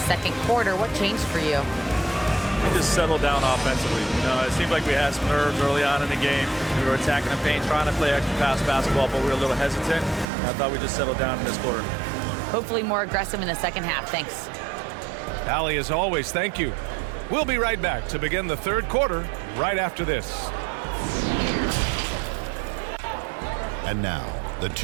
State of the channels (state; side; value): drops out; left; at 10.2 s